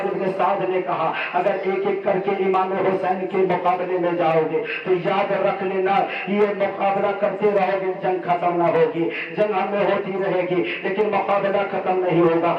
بن سعد نے کہا اگر ایک ایک کر کے امام حسین کے مقابلے میں جاؤ گے تو یاد رکھ لینا یہ مقابلہ کرتے رہو گے، جنگ ختم نہ ہوگی، جنگ ہمیں ہوتی رہے گی لیکن مقابلہ ختم نہیں ہوگا،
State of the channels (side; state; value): both; identical; correlation 1.00